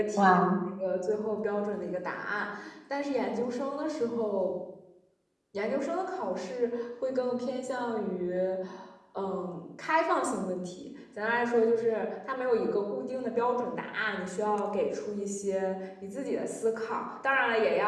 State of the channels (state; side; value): identical; both; correlation 1.00